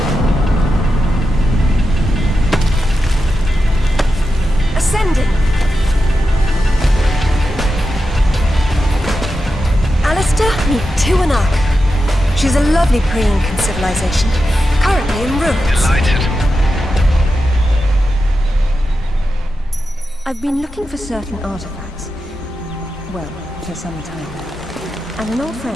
Ascending. Alistair, meet Tiwanaku. She's a lovely pre-Incan civilization, currently in ruins. Delighted. I've been looking for certain artifacts. Well, for some time now. And an old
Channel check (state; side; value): normal; both; correlation 0.89